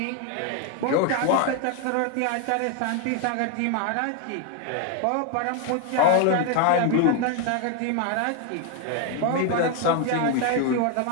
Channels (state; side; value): different; both; correlation 0.01